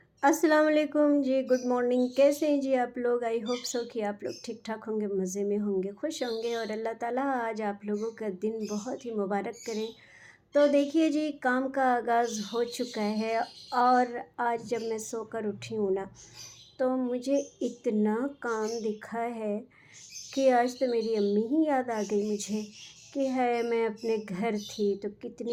अस्सलाम वालेकुम जी, good morning. कैसे हैं जी आप लोग? आई होप सो कि आप लोग ठीक ठाक होंगे, मज़े में होंगे, खुश होंगे और अल्लाह ताला आज आप लोगों का दिन बहुत ही मुबारक करें। तो देखिए जी, काम का आगाज़ हो चुका है और आज जब मैं सोकर उठी हूँ ना, तो मुझे इतना काम दिखा है कि आज तो मेरी अम्मी ही याद आ गई मुझे कि है मैं अपने घर थी तो कितने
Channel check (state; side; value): identical; both; correlation 1.00